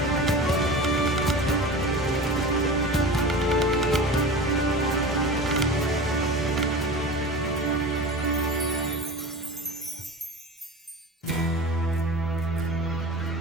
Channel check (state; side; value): normal; both; correlation 0.33